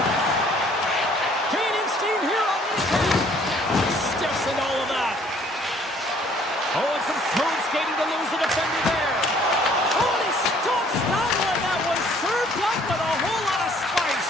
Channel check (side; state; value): both; normal; correlation 0.59